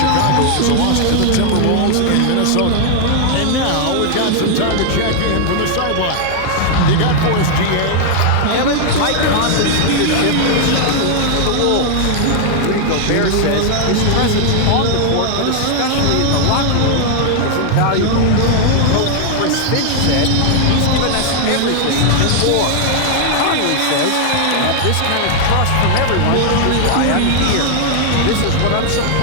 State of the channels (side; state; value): both; different; correlation -0.01